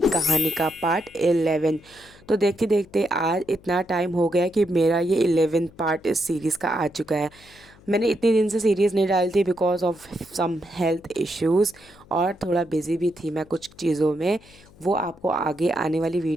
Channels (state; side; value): noise; left; hum, 25 dB below the sound